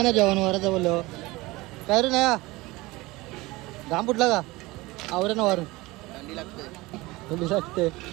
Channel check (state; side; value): quieter; left; 21.2 dB